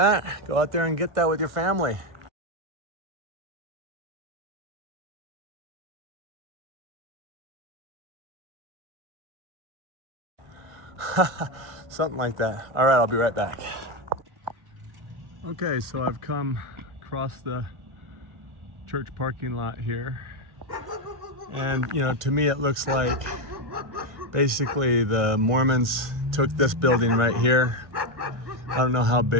Go out there and get that with your family. Something like that. All right, I'll be right back. Okay, so I've come across the church parking lot here. And, you know, to me it looks like basically the Mormons took this building right here. I don't know how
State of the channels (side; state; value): left; late; 1.5 ms